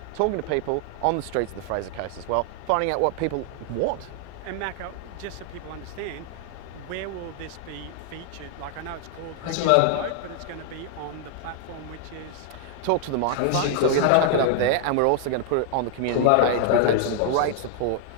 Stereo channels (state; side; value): different; both; correlation 0.00